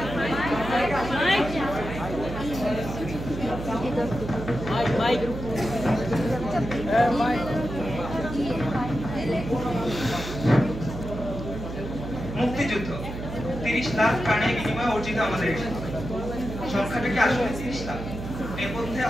মুক্তিযুদ্ধ 30 লাখ প্রাণের বিনিময়ে অর্জিত আমাদের সংখ্যাটা কি আসলে 30 লাখ? এর মধ্যে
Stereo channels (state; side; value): noise; right; hum, 8 dB below the sound